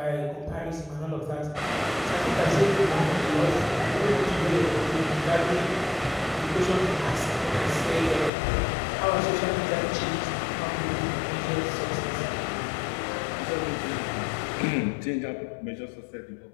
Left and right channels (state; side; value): drops out; right; at 8.3 s